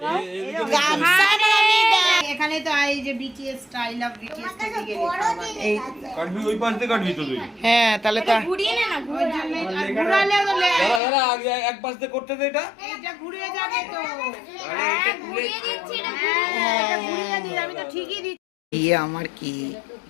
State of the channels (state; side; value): drops out; right; at 11.0 s